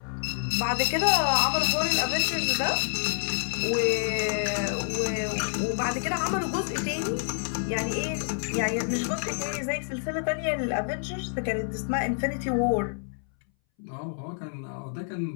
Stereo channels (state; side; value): silent; right; 60 dB below the other